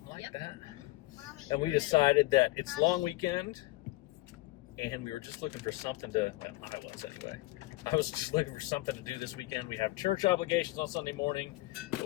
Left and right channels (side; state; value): right; quieter; 19.7 dB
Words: like Yep. that. Mommy, And we decided that it's long weekend, and we were just looking for something to. Well, I was anyway. I was just looking for something to do this weekend. We have church obligations on Sunday morning, but